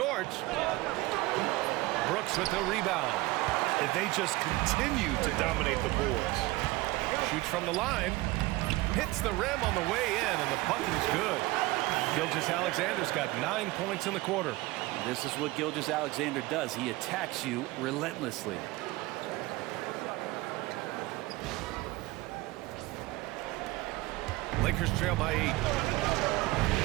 Brooks with the rebound. And they just continue to dominate the boards. Shoots from the line. Hits the rim on the way in, and the bucket is good. Gilgeous-Alexander's got 9 points in the quarter. This is what Gilgeous-Alexander does. He attacks you relentlessly. Lakers trail by 8.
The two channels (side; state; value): left; quieter; 20.0 dB